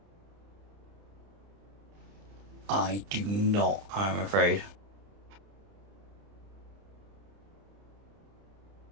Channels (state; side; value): late; left; 30 ms